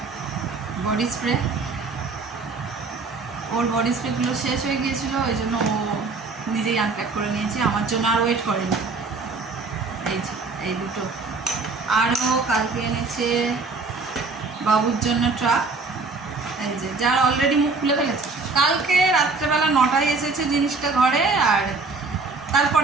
বডি স্প্রে, ওর বডি স্প্রেগুলো শেষ হয়ে গিয়েছিলো, ওই জন্য ও নিজেই আনপ্যাক করে নিয়েছে, আমার জন্য আর ওয়েট করেনি। এই যে এই দুটো। আরও কালকে এনেছে বাবুর জন্য ট্রাক, এই যে যার অলরেডি মুখ খুলে ফেলেছে। কালকে রাত্রেবেলা 9টায় এসেছে জিনিসটা ঘরে, আর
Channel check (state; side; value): quieter; left; 4.0 dB